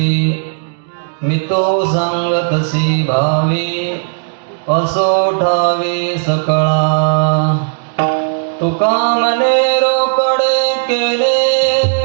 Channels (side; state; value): left; silent; digital silence